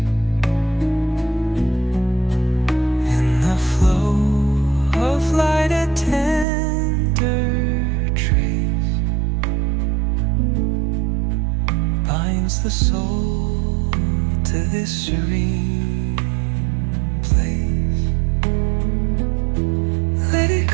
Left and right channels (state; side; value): drops out; left; at 6.5 s